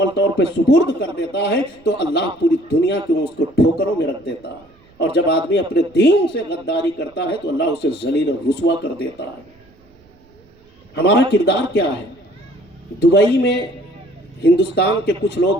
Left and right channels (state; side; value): noise; right; rumble, 30 dB below the sound